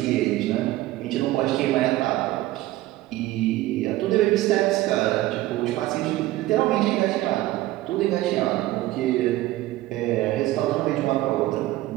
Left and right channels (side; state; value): left; quieter; 16.5 dB